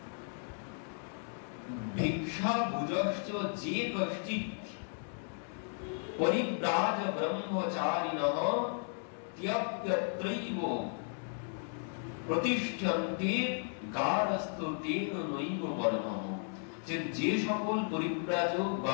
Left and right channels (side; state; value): right; silent; 55 dB below the other